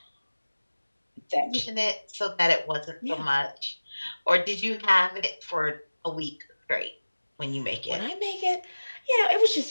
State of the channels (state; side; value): inverted; both; correlation -1.00